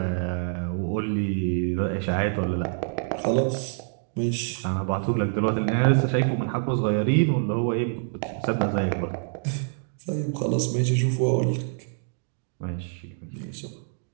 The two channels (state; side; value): silent; left; digital silence